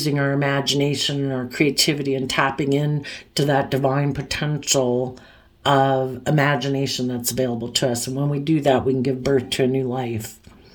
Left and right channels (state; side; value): identical; both; correlation 1.00